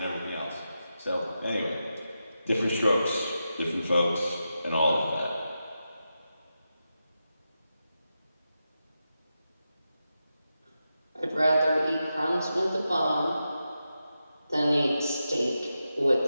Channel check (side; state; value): both; inverted; correlation -0.89